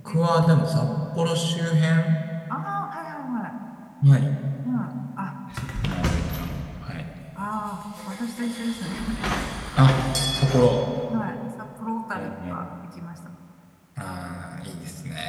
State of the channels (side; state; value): both; identical; correlation 1.00